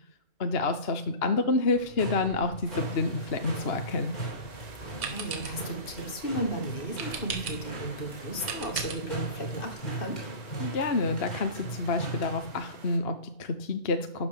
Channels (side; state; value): right; late; 2.5 ms